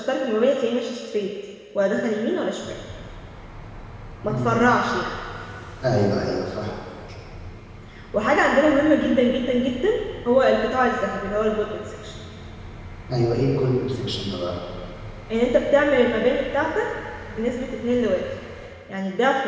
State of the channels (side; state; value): both; identical; correlation 1.00